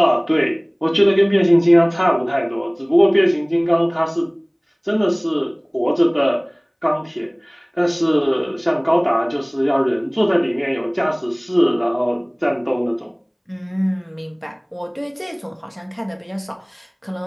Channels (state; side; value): identical; both; correlation 1.00